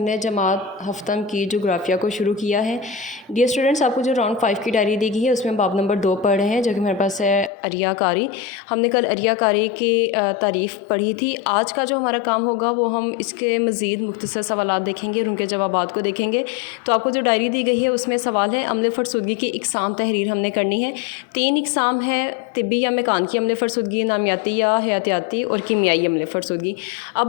जमात हफ्तम की जोग्राफिया को शुरू किया है। डियर स्टूडेंट्स, आपको जो राउंड 5 की डायरी दी गई है उसमें बाब नंबर 2 पढ़ रहे हैं, जो कि हमारे पास है अरियाकारी। हमने कल अरियाकारी की तारीफ़ पढ़ी थी। आज का जो हमारा काम होगा वो हम इसके मज़ीद मुख्तसर सवालात देखेंगे और उनके जवाबात को देखेंगे। तो आपको जो डायरी दी गई है उसमें सवाल है अम्ल फ़रसुदगी की इकसाम तहरीर हमने करनी है। 3 इकसाम है, तिब्बी या मेकानिकी अम्ल फ़रसुदगी, नामियाती या हयातियाती और कीमियाई अम्ल फ़रसुदगी।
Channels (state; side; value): drops out; right; at 7.5 s